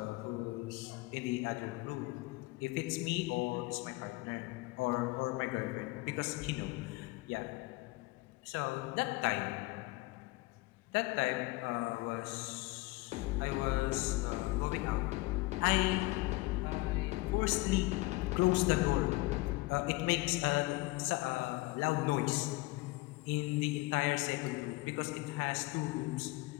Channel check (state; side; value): quieter; right; 22.1 dB